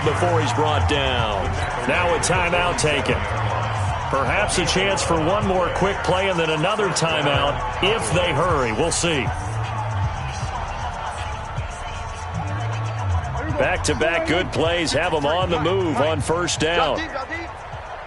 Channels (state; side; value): identical; both; correlation 1.00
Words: before he's brought down. Now a timeout taken. Perhaps a chance for one more quick play and then another timeout if they hurry. We'll see. Back-to-back good plays have them on the move on 1st down.